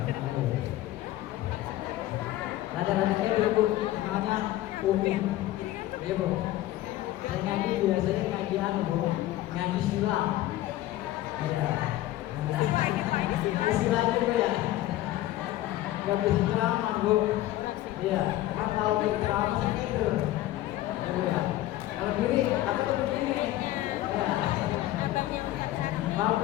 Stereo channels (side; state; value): right; quieter; 15.1 dB